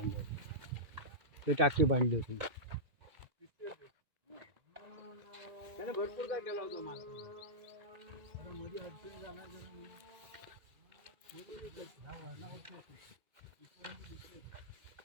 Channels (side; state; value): left; late; 2.1 ms